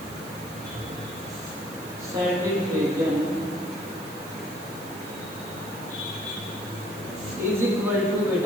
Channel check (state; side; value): noise; right; hiss, 16 dB below the sound